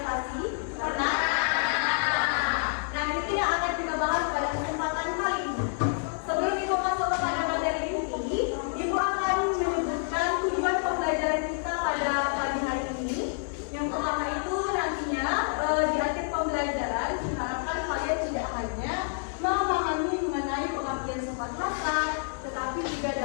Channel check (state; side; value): silent; right; 59 dB below the other